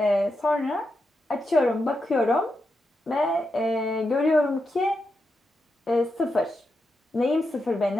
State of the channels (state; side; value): normal; both; correlation 0.86